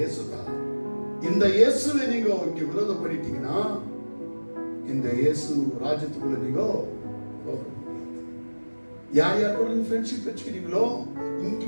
தான். இந்த இயேசுவை நீங்க இங்க விரோதம் பண்ணிட்டீங்கன்னா, இந்த இயேசு ராஜ்யத்துக்குள்ள நீங்க యారు కూడా ఫ్రెండ్షిప్ வச்சுக்கிறீங்களோ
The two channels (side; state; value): both; inverted; correlation -1.00